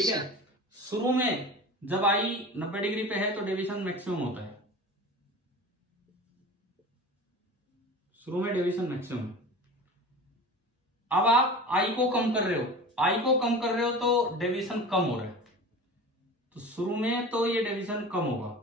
है। शुरू में जब आई 90 डिग्री पे है तो डेविएशन मैक्सिमम होता है, शुरू में डेविएशन मैक्सिमम। अब आप आई को कम कर रहे हो तो डेविएशन कम हो रहा है, तो शुरू में तो ये डेविएशन कम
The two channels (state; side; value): normal; both; correlation 0.35